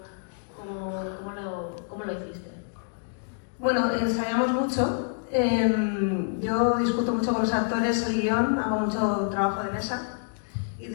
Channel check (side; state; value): right; silent; digital silence